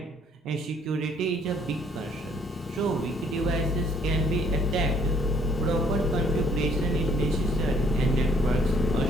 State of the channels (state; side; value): normal; both; correlation 0.63